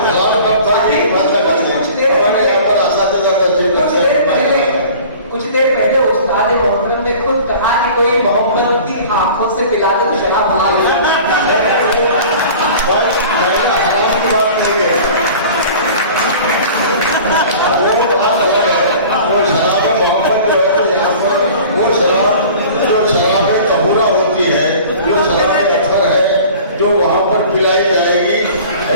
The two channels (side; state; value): both; inverted; correlation -0.43